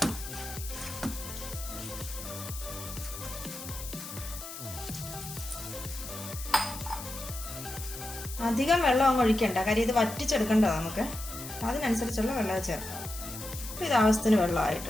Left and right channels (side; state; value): left; noise; hiss, 10 dB below the sound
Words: അധികം വെള്ളം അങ്ങ് ഒഴിക്കണ്ട, കാര്യം ഇത് വറ്റിച്ചെടുക്കണ്ടതാണ് നമുക്ക്. അതിനനുസരിച്ചുള്ള വെള്ളം ചേർക്കാം. അപ്പോൾ ഇത് ആവശ്യത്തിന്